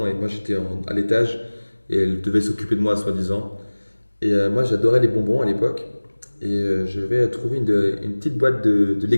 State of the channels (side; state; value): both; inverted; correlation -1.00